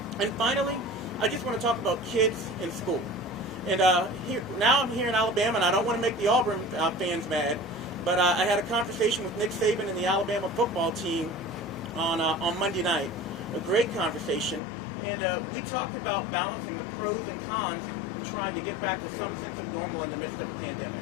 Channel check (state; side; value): drops out; right; at 14.6 s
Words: And finally, I just want to talk about kids in school. And now I'm here in Alabama, and I don't want to make the Auburn fans mad, but I had a conversation with Nick Saban and the Alabama football team on Monday night. A great conversation. And we talked about balancing the pros and cons of trying to get back to some sense of normal in the midst of a pandemic.